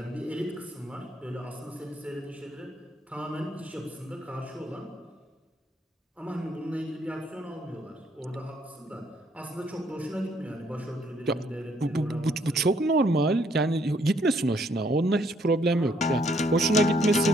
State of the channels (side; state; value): both; normal; correlation 0.68